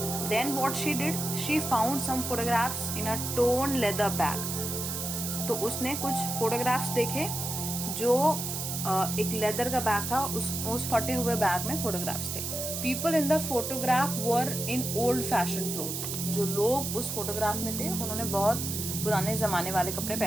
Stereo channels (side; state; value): right; noise; hiss, 4 dB below the sound